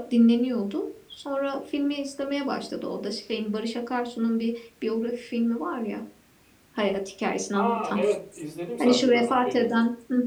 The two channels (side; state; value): both; identical; correlation 1.00